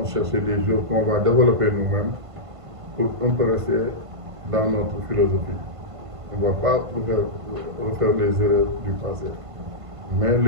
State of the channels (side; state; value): left; late; 1.5 ms